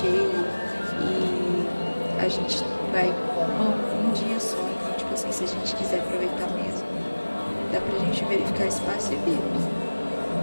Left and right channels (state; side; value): inverted; both; correlation -1.00